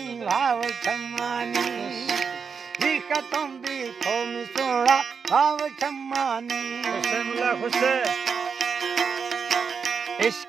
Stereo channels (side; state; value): left; quieter; 6.0 dB